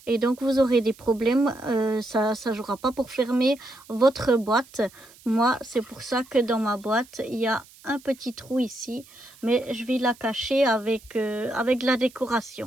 Et donc vous aurez des problèmes, ça ne jouera pas pour fermer votre boîte. Moi, c'est pour ça que dans ma boîte, il y a un petit trou ici. Mais je vais la cacher avec la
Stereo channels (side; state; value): right; noise; hiss, 24 dB below the sound